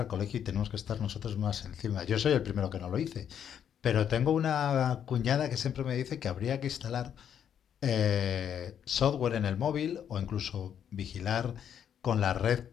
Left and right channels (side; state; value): right; quieter; 8.9 dB